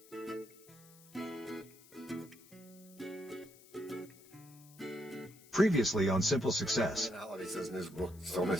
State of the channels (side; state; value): left; noise; hiss, 23 dB below the sound